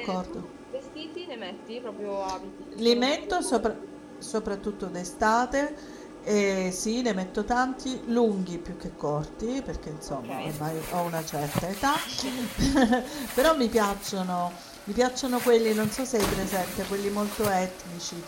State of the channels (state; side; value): identical; both; correlation 1.00